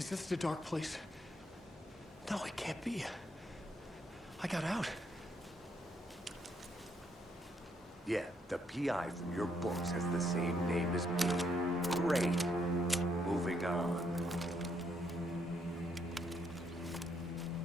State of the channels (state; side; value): normal; both; correlation 0.74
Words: this the dark place? No, it can't be. I got out. Yeah, the PI from your books has the same name as me. Great. Moving on.